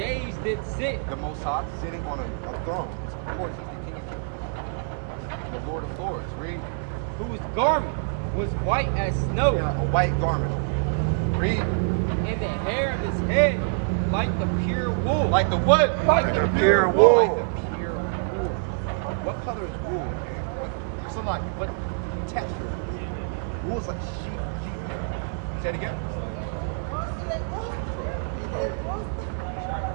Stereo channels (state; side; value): silent; left; 57 dB below the other